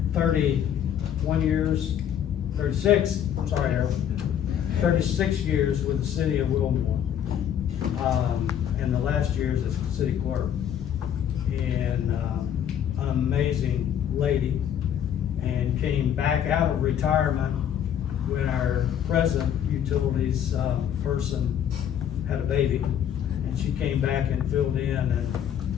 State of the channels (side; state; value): right; quieter; 9.5 dB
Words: 31 years, 36, I'm sorry, Harold, 36 years with the city of Wilmore. And the last year as a city clerk. And an amazing lady, and came back out of retirement when our present utilities person had a baby, and she came back and filled in and